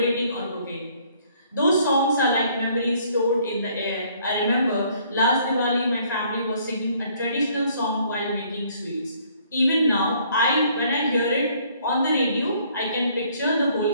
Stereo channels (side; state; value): both; inverted; correlation -0.62